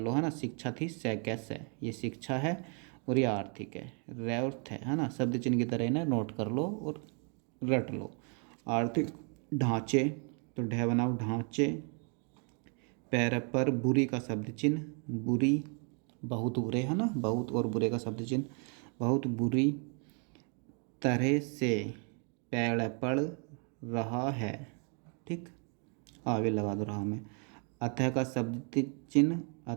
है ना। शिक्षा थी सैकस है, ये शिक्षा है और ये आर्थिक है, रैर्थ है ना, शब्द चिन्ह की तरह इन्हें नोट कर लो और रट लो। आर्थिक ढांचे, तो ढह बनाओ ढांचे। पैर पर बुरी का शब्द चिन्ह, बुरी, बहुत बुरे, है ना, बहुत और बुरे का शब्द चिन्ह, बहुत बुरी तरह से पेड़ पड़ रहा है, ठीक, आगे लगा दो रहा में। अतः का शब्द चिन्ह,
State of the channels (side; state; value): left; quieter; 38.8 dB